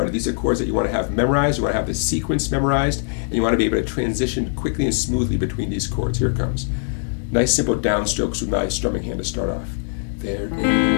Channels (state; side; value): silent; right; 65 dB below the other